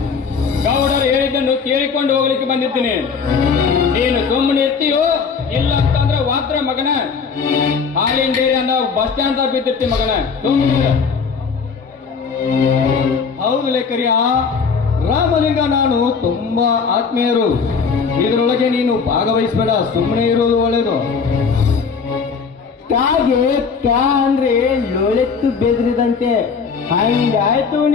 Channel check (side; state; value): right; quieter; 5.6 dB